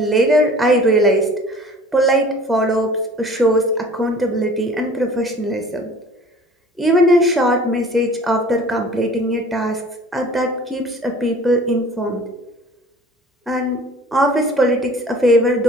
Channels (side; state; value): both; normal; correlation 0.47